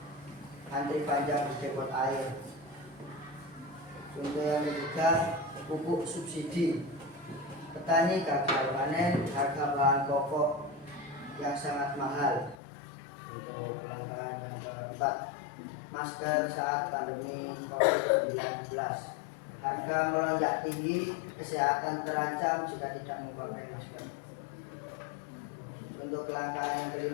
antri panjang di depot air. Contoh yang ketiga, pupuk subsidi, petani gagal panen, harga bahan pokok yang sangat mahal. Untuk kelangkaan yang keempat, masker saat pandemi COVID-19, harga melonjak tinggi, kesehatan terancam jika tidak memakai masker. Untuk kelangkaan yang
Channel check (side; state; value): right; drops out; at 12.6 s